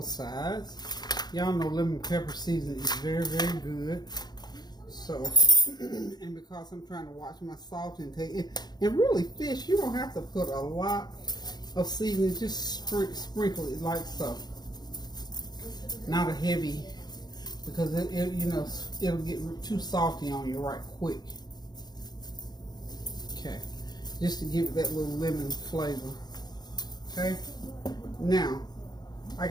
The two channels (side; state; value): right; late; 0.20 ms